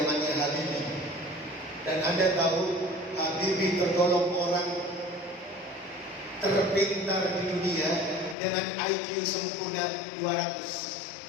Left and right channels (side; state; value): right; drops out; at 8.3 s